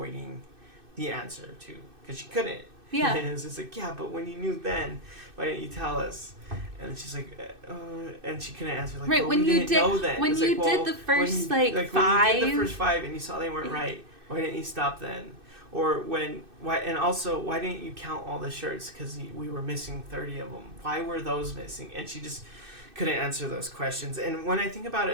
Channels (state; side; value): late; left; 2.6 ms